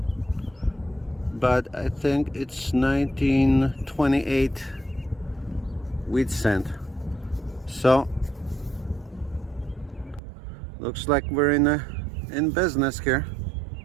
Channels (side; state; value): left; drops out; at 10.2 s